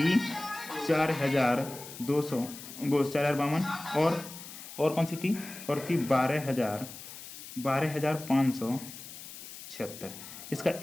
4200 वो 4052 और कौन सी थी, और थी 12576, इसका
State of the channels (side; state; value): left; noise; hiss, 13 dB below the sound